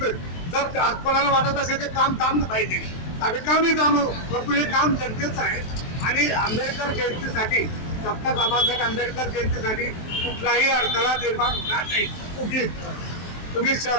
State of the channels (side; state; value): right; late; 23 ms